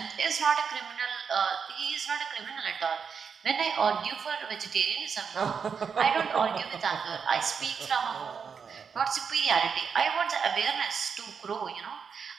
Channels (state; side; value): quieter; left; 6.3 dB